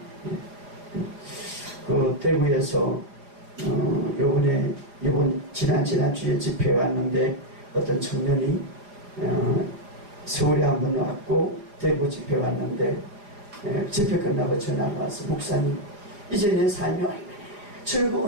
그 대구에서 지난주에 집회에 왔는데 어떤 청년이 서울에 한번 왔고 대구 집회에 왔는데 집회 끝나고 전화가 와서, 목사님, 이제 내 삶이 얼마나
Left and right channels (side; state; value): left; late; 4.8 ms